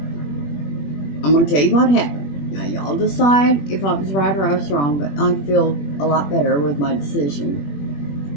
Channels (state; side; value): late; right; 21 ms